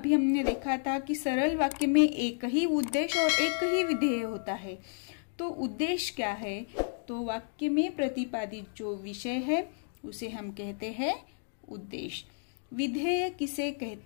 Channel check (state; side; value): silent; right; 57 dB below the other